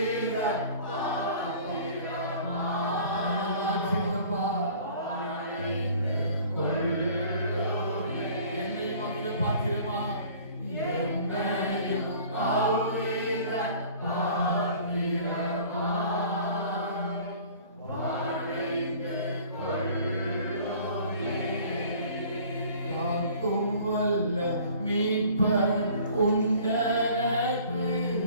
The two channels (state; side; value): inverted; both; correlation -0.49